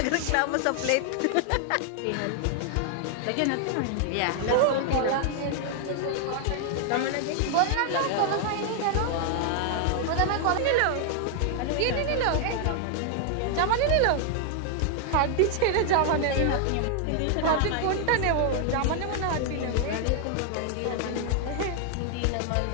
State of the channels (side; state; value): both; different; correlation 0.00